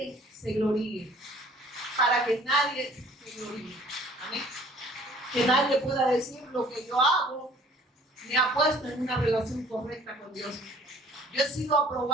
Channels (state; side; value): normal; both; correlation 0.54